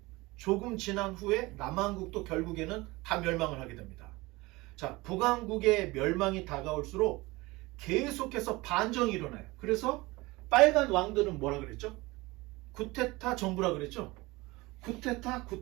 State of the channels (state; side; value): quieter; left; 21.9 dB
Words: 조금 지난 후에 남왕국도 결국에는 다 멸망을 하게 됩니다. 자, 북왕국의 멸망이 다가올수록 계속해서 반정이 일어나요. 그래서 빨간 왕들은 뭐라 그랬죠? 구테타 정부라 그랬죠? 구테타,